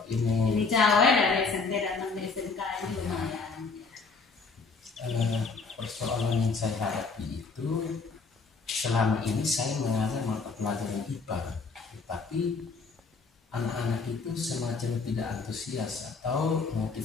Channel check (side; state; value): right; quieter; 4.5 dB